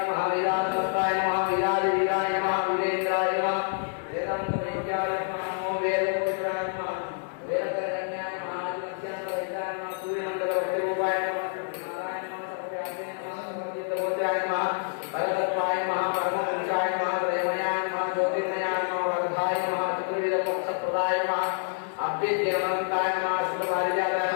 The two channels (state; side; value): silent; right; 60 dB below the other